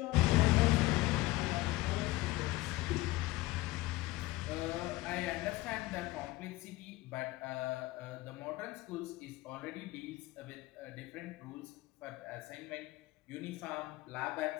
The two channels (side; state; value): right; quieter; 18.6 dB